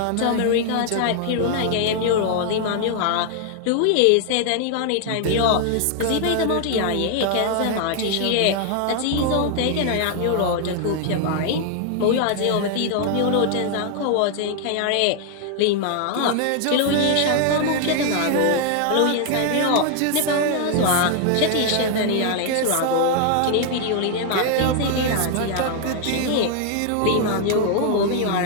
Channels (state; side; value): different; both; correlation 0.00